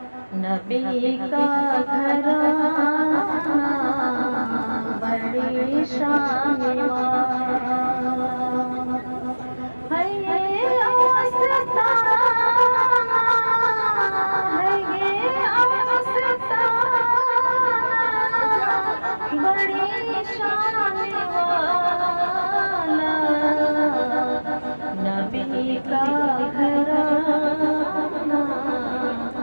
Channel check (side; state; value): both; inverted; correlation -1.00